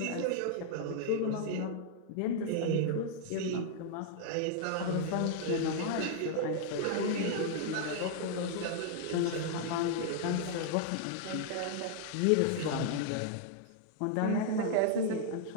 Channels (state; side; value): different; both; correlation -0.01